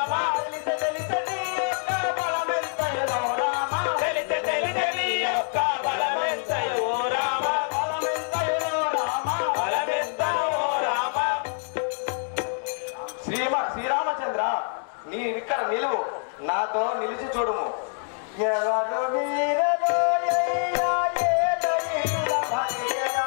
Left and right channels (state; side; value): silent; right; 58 dB below the other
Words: తెలిసి తెలిసి నీ యొక్క బలమెంతయులో రామ తెలిసి నీ యొక్క బలమెంతయో రామ బలమెంతయులో రామ బలమెంతయో రామ. శ్రీరామచంద్ర, నీ ఇక్కడ నిలువు, నాతో నిలిచి చూడుము. ఎవరు మీరలో అయ్యా ఏదో నిలువ